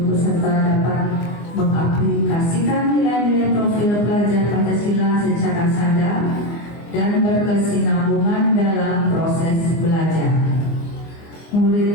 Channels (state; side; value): late; right; 24 ms